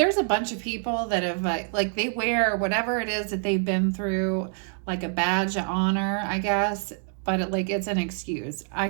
a bunch of people that have like they wear whatever it is that they've been through, like a badge of honor, I guess. But it's an excuse. I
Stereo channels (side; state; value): left; silent; 61 dB below the other